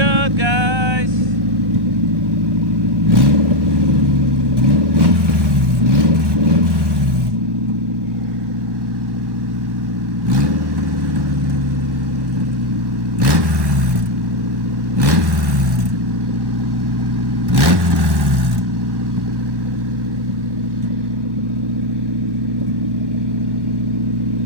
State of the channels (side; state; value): left; late; 1.1 ms